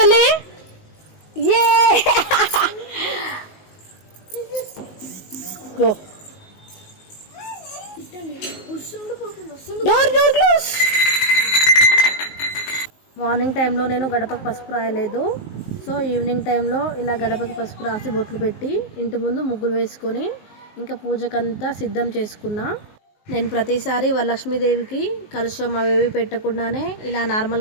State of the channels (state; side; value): late; right; 19 ms